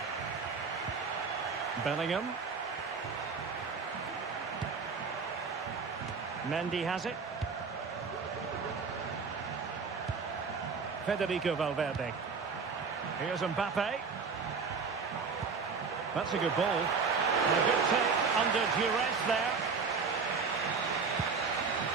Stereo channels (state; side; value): quieter; left; 5.2 dB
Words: Bellingham. Mendy has it. Federico Valverde. Here's Mbappe. That's a good ball. And a good take under duress there.